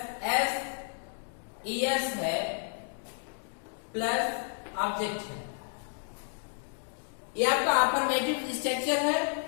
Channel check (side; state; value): right; silent; 57 dB below the other